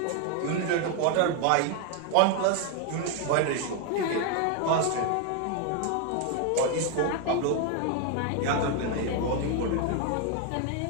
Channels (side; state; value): both; different; correlation 0.01